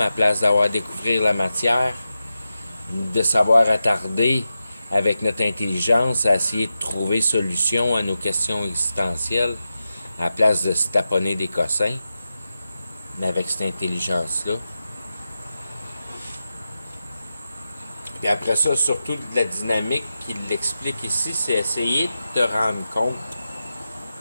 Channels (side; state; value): both; inverted; correlation -0.91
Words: à place d'avoir découvrir la matière, de savoir attarder avec notre intelligence à essayer de trouver solution à nos questions existentielles, à la place de se taponner des cossins. avec cette intelligence-là. Puis après ça, surtout de la dynamique qu'il l'explique ici, c'est essayer de te rendre compte